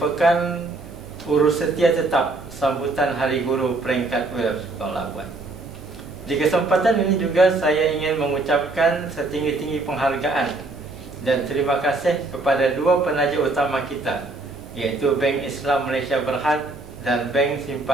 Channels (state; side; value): quieter; left; 3.2 dB